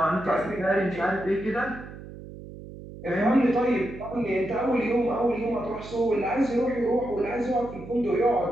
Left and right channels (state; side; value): noise; right; hum, 14 dB below the sound